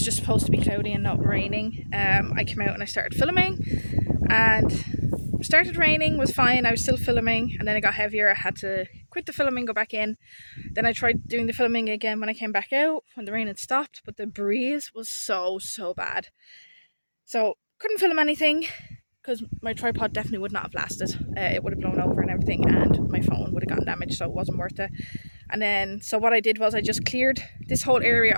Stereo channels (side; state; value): both; inverted; correlation -1.00